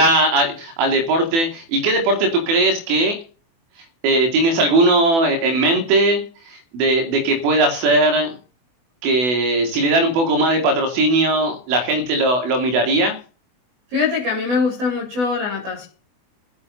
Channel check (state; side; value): late; left; 24 ms